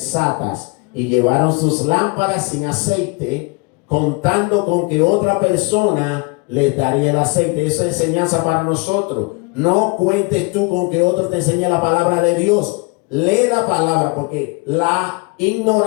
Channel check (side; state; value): right; quieter; 28.9 dB